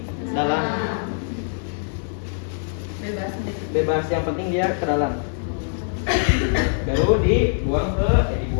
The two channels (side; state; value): right; silent; digital silence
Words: dalam. Bebas, yang penting dia ke dalam. Baru